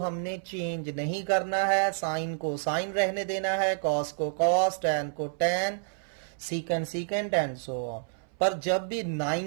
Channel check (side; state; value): left; silent; 59 dB below the other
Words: चेंज नहीं करना है, साइन को साइन रहने देना है, कॉस को कॉस, टैन को टैन, सीकेंड सीकेंड एंड सो ऑन। पर जब भी